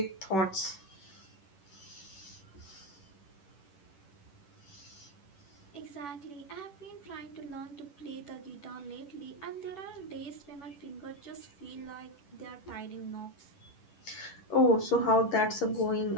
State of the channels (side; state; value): right; late; 11 ms